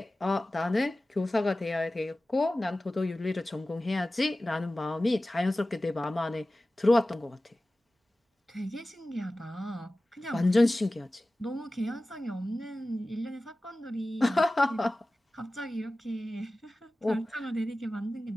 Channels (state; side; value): normal; both; correlation 0.96